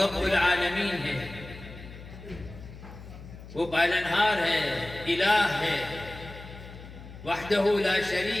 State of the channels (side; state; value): left; noise; hum, 15 dB below the sound